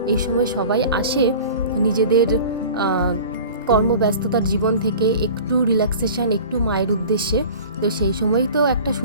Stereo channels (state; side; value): inverted; both; correlation -0.40